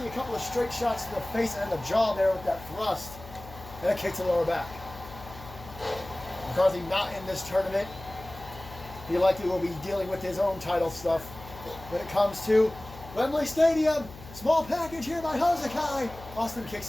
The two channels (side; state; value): left; noise; hum, 17 dB below the sound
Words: A couple of straight shots to the face and the jaw there with that thrust. And a kick to the lower back. McCarthy not in this tournament. He likely will be dealing with his own title stuff when it comes to Wembley Stadium. Small package here by Hosakai. Austin kicks